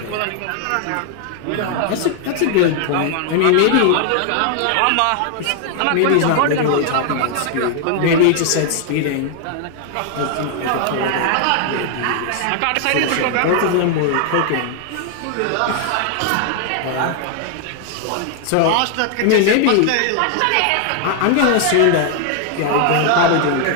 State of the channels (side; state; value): both; different; correlation 0.00